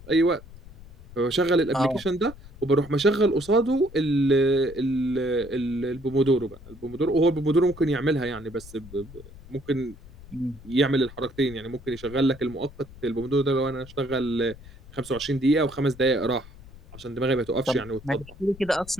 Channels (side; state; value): left; noise; rumble, 19 dB below the sound